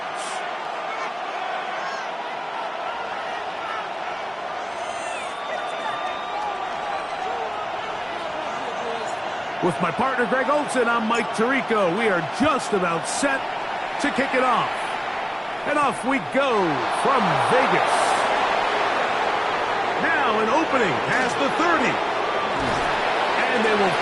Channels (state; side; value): identical; both; correlation 1.00